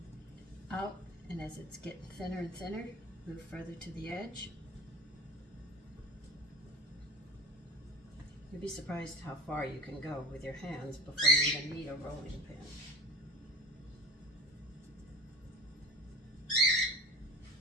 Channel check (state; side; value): normal; both; correlation 0.36